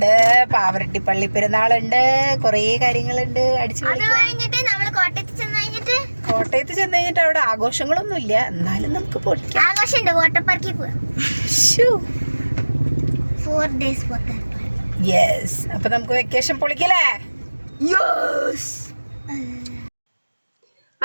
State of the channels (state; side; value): inverted; both; correlation -1.00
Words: പാവറട്ടി പള്ളി പെരുന്നാളുണ്ട്, കൊറേ കാര്യങ്ങളുണ്ട്. അടിച്ചു കോട്ടയത്ത് ചെന്ന് കഴിഞ്ഞിട്ട് അവിടെ ആഘോഷങ്ങളൊന്നും ഇല്ല, എന്നാലും നമുക്ക് പൊളിക്കാം. യെസ്, അപ്പൊ നമുക്ക് വെക്കേഷൻ പൊളിക്കലേ.